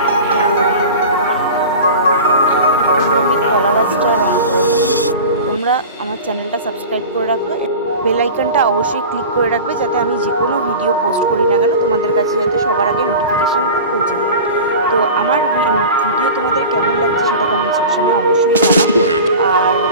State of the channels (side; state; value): both; inverted; correlation -0.34